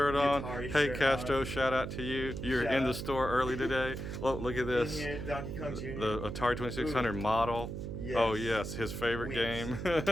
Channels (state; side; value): noise; right; hum, 6 dB below the sound